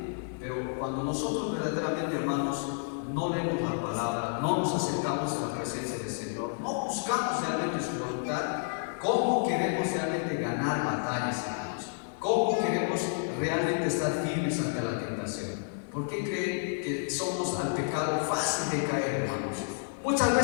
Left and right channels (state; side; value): silent; right; 58 dB below the other